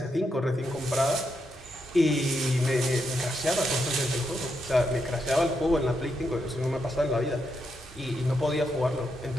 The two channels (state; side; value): normal; both; correlation 0.82